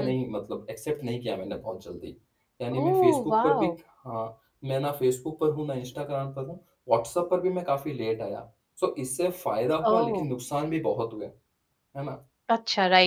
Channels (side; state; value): both; identical; correlation 1.00